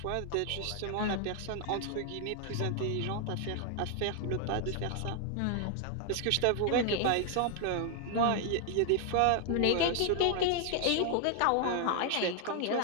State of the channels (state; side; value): different; both; correlation 0.00